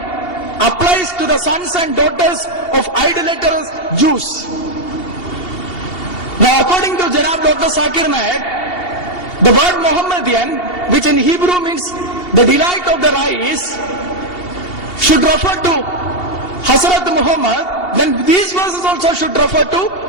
applies to the sons and daughters of idolatrous Jews. Now according to Janab Dr. Zakir Naik, the word Muhammadian, which in Hebrew means the delight of the eyes, should refer to Hazrat Muhammad, then these verses also should refer to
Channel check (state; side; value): late; right; 2.7 ms